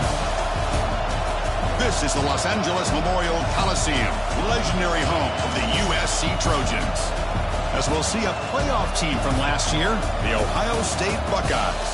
This is the Los Angeles Memorial Coliseum, legendary home of the USC Trojans. As we'll see a playoff team from last year, the Ohio State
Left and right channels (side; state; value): both; identical; correlation 1.00